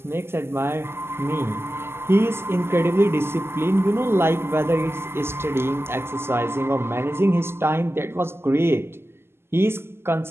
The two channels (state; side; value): late; left; 0.12 ms